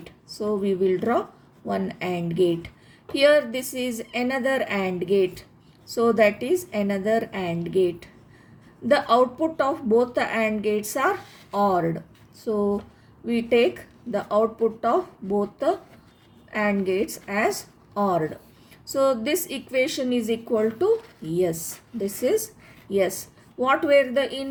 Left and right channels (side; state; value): both; identical; correlation 1.00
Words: So we will draw one AND gate. Here this is another AND gate. So that is another AND gate. The output of both the AND gates are ORed. So we take the output of both the AND gates as ORed. So this equation is equal to yes. This is yes. What were the